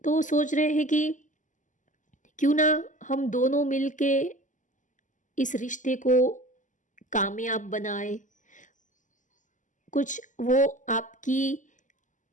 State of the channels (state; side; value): late; right; 0.37 ms